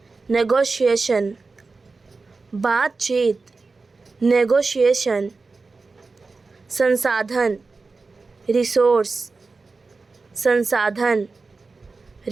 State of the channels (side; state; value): left; quieter; 4.0 dB